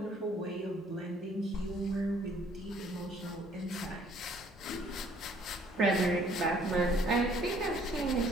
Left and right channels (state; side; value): normal; both; correlation 0.60